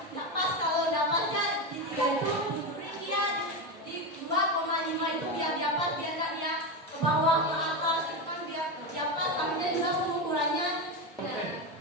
Nggak pas kalau dapatnya di 3 itu diberi dia di 2,5 itu biar dapat biar nggak dia ke bawah ke atas itu kan biar dapat kaminya juga pengukurannya.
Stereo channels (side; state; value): both; normal; correlation 0.15